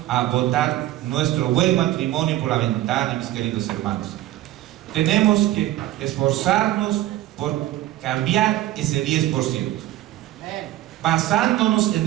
a botar nuestro buen matrimonio por la ventana, mis queridos hermanos. Tenemos que esforzarnos por cambiar ese 10%, basándonos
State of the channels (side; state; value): left; quieter; 14.9 dB